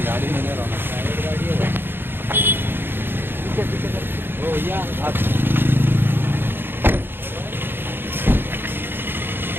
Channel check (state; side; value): late; left; 0.10 ms